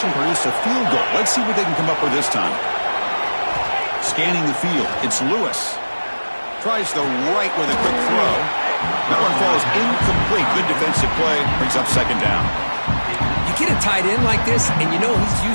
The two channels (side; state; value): both; inverted; correlation -1.00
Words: produced a field goal. Let's see what they can come up with this time. Scanning the field, it's Lewis. Tries the right with a quick throw. That one falls incomplete. Good defensive play. Brings up second down. You get a tight end like this, and you know he's